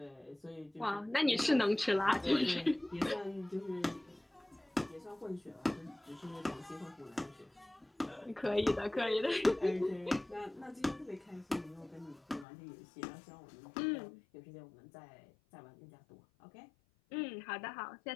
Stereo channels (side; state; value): right; drops out; at 12.5 s